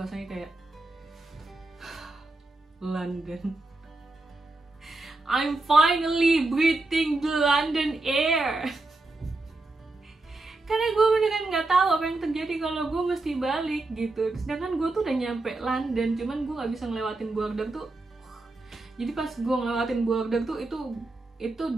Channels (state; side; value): quieter; left; 3.0 dB